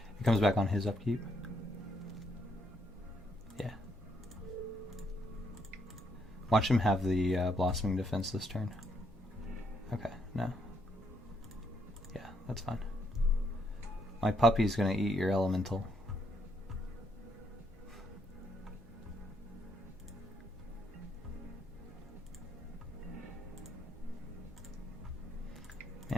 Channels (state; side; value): normal; both; correlation 0.74